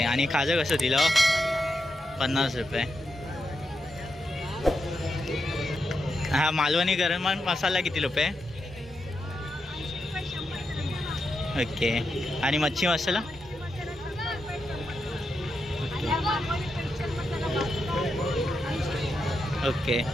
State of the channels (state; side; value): normal; both; correlation 0.86